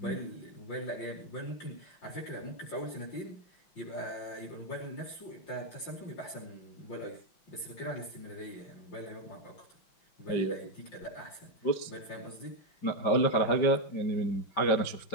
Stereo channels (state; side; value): late; right; 5.2 ms